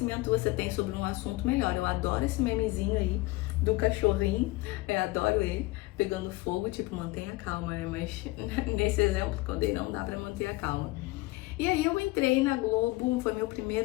você tem sobre um assunto, melhor. Eu adoro esse memezinho aí do cachorrinho, eu adoro ele, pegando fogo, tipo, mantenha calma, né? Mas nesse exemplo que eu dei, não dá pra manter a calma. E aí eu entrei na Globo, foi meu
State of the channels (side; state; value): right; quieter; 20.6 dB